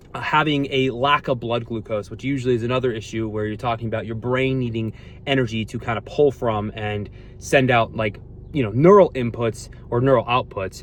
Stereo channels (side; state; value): both; identical; correlation 1.00